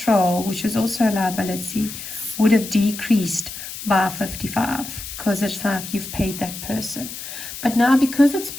which is also a liability, would have decreased by 55 because it's like you've paid that person. But now because it's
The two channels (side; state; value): left; noise; hiss, 10 dB below the sound